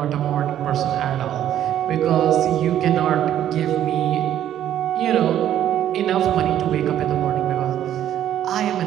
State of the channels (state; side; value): quieter; left; 11.2 dB